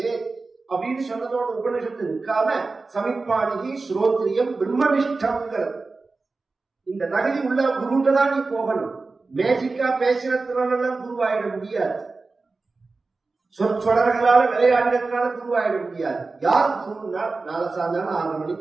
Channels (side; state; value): left; quieter; 3.8 dB